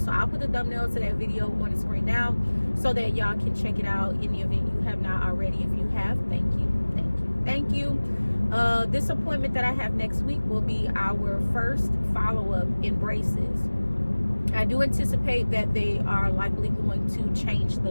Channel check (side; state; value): both; inverted; correlation -1.00